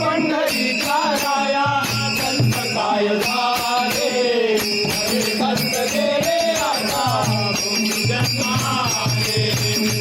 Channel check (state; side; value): identical; both; correlation 1.00